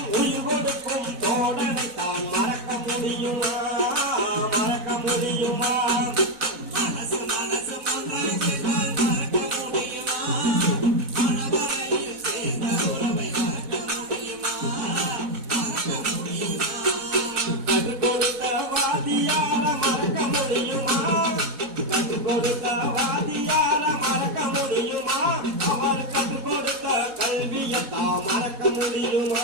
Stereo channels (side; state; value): left; late; 4.1 ms